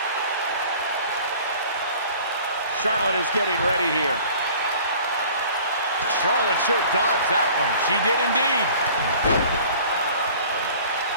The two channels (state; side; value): inverted; both; correlation -0.48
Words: Charlotte is getting ready here. Charlotte sure dodged that one. She did indeed.